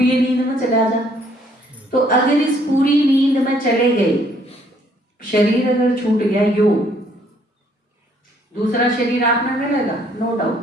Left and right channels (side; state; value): both; normal; correlation 0.65